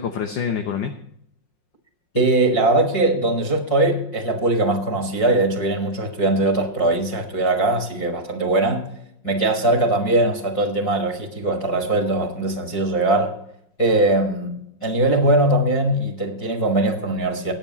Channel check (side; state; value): right; late; 5.5 ms